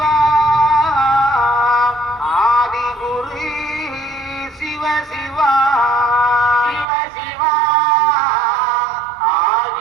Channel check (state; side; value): drops out; left; at 6.9 s